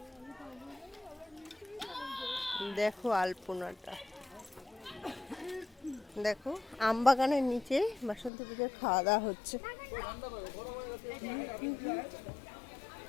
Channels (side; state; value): right; drops out; at 8.3 s